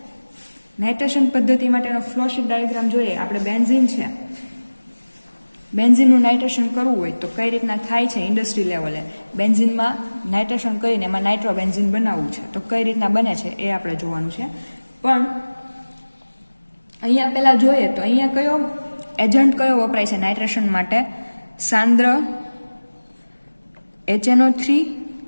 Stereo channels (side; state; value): both; inverted; correlation -1.00